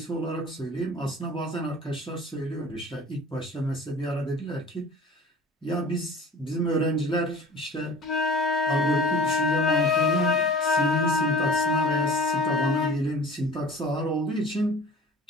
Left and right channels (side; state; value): both; normal; correlation 0.43